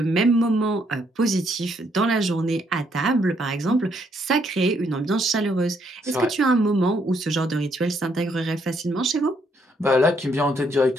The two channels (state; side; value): normal; both; correlation 0.72